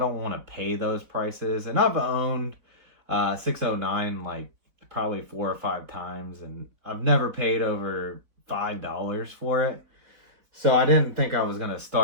want to pay those prices. And I've owned 609 like probably 4 or 5 times, and I've never paid over $5 for it. So I didn't think I was going to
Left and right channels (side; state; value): left; late; 4.0 ms